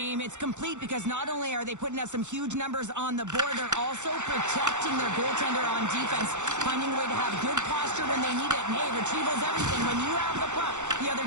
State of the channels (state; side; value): late; left; 0.84 ms